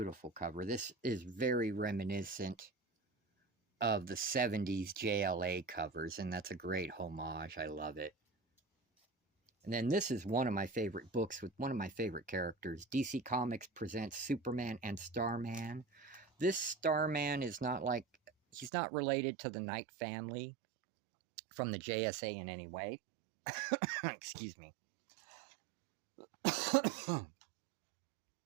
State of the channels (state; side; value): drops out; left; at 18.7 s